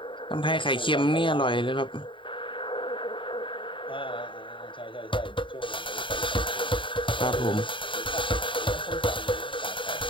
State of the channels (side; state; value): right; late; 0.24 ms